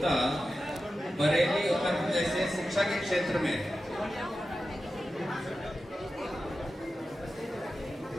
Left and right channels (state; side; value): normal; both; correlation 0.92